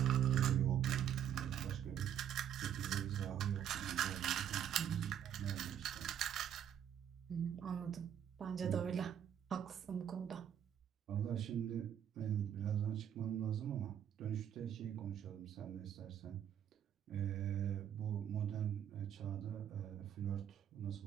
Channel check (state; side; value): quieter; left; 9.5 dB